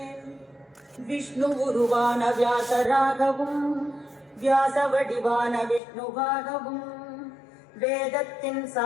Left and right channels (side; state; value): right; drops out; at 5.8 s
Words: விஷ்ணு உருவான வியாசராகவும் வியாச வடிவான விஷ்ணுவாகவும் வேதத்தின்